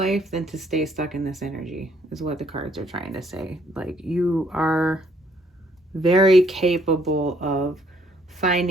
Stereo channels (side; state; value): both; normal; correlation 0.66